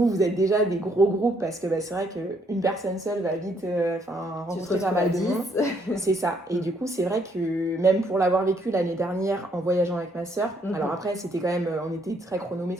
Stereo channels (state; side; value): normal; both; correlation 0.69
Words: êtes déjà des gros groupes parce que c'est vrai qu'une personne seule va vite rencontrer pas mal de monde. C'est ça. Et du coup, c'est vrai que même pour l'avoir vécu l'année dernière en voyageant avec ma sœur, alors après, c'était quand même, on était très